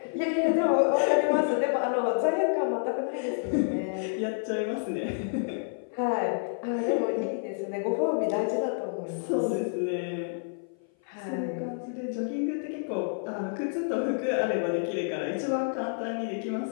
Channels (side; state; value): right; silent; 56 dB below the other